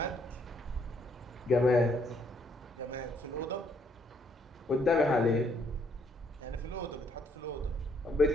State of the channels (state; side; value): normal; both; correlation 0.69